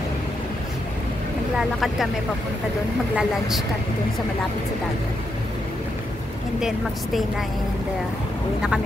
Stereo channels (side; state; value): both; normal; correlation 0.82